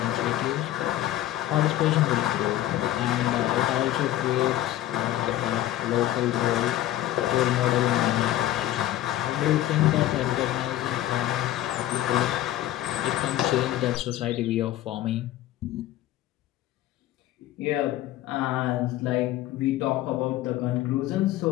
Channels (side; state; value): right; quieter; 13.9 dB